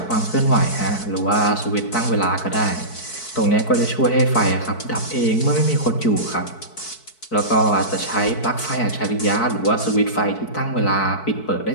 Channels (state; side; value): late; right; 4.6 ms